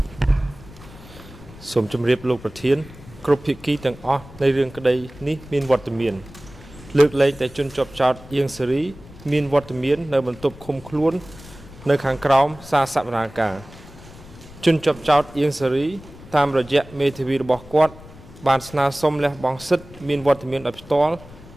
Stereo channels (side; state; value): left; noise; rumble, 19 dB below the sound